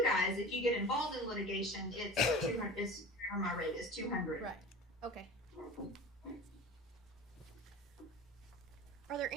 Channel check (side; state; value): both; normal; correlation 0.36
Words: guys, if you get involved in litigation, it's 200, my rate is 200. Right, okay. Are there